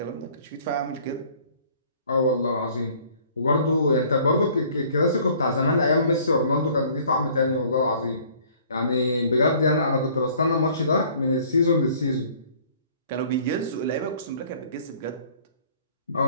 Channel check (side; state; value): both; inverted; correlation -0.55